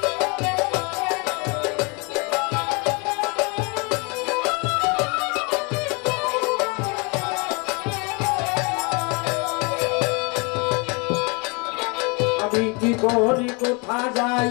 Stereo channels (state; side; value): quieter; right; 31.1 dB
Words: কি করি কোথায় যাই